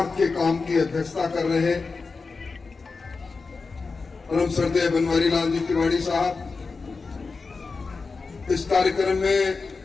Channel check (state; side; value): quieter; right; 4.4 dB